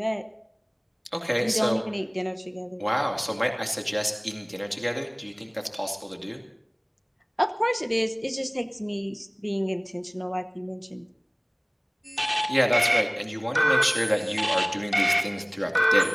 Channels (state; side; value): identical; both; correlation 1.00